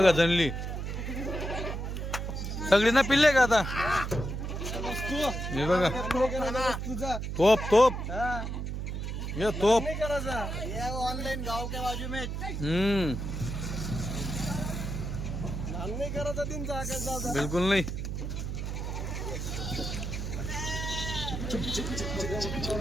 जनली सगळी ना पिल्ले का आता. हे बघा तुझा. तोप तोप. हा. ये तोप. नाही करायचा. ये ऑनलाइन गाव के बाजू में. नान नाही करायचा तीनचा आकाश दादा. बिलकुल नाही.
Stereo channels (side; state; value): right; noise; hum, 4 dB below the sound